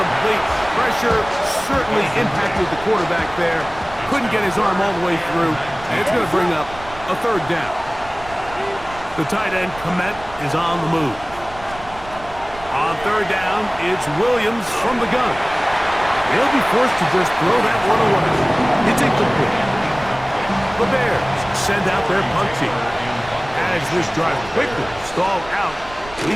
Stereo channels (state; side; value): noise; right; rumble, 17 dB below the sound